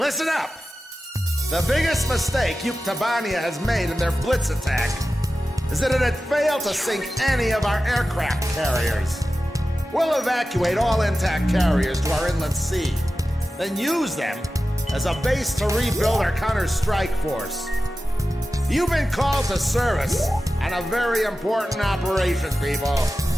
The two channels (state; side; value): normal; both; correlation 0.93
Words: up! The biggest mistake Yuktabania has made in their blitz attack is that it had failed to sink any of our aircraft carriers. We'll evacuate all intact carriers to our inland sea, then use them as a base to rebuild our counter-strike force. You've been called to service on a very important operation, people.